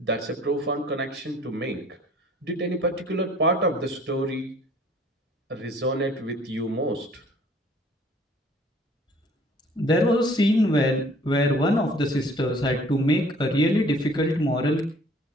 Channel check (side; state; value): both; normal; correlation 0.54